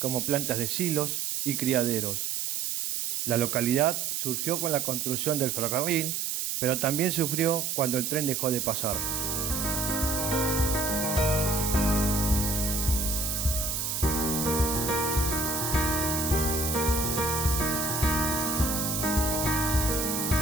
plantas de silos y criaderos. La localidad surgió con la construcción del ferrocarril, pero también sufrió cuando el tren dejó de pasar.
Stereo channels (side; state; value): right; noise; hiss, 1 dB below the sound